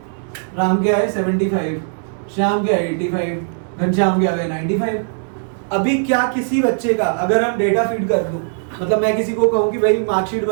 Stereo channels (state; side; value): silent; left; digital silence